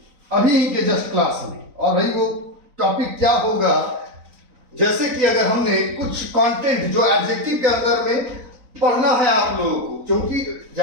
अभी के जस्ट क्लास में, और भाई वो टॉपिक क्या होगा, जैसे कि अगर हमने कुछ कंटेंट जो एडजेक्टिव के अंदर में पढ़ना है आप लोगों को, क्योंकि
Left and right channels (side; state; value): left; late; 3.9 ms